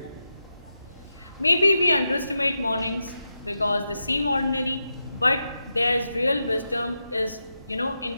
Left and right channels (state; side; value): inverted; both; correlation -0.88